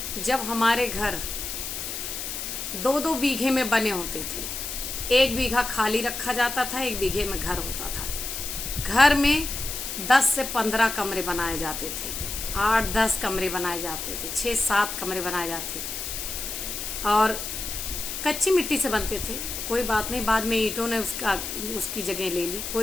जब हमारे घर 2-2 बीघे में बने होते थे। 1 बीघा खाली रखा जाता था, 1 बीघे में घर होता था। घर में 10 से 15 कमरे बनाए जाते थे, 8-10 कमरे बनाए जाते थे, 6-7 कमरे बनाए जाते थे और कच्ची मिट्टी से बनते थे। कोई बात नहीं, बाद में ईंटों ने उसकी जगह ले ली,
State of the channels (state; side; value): noise; left; hiss, 5 dB below the sound